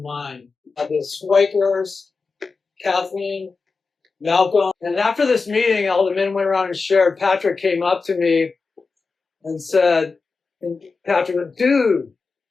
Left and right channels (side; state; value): right; quieter; 4.4 dB